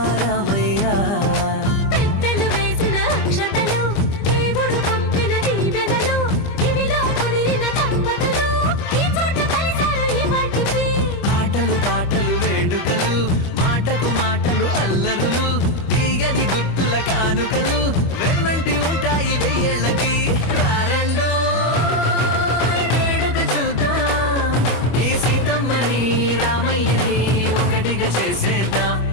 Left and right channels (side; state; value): right; late; 25 ms